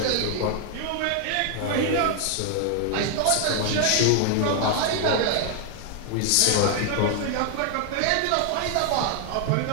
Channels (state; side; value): different; both; correlation 0.00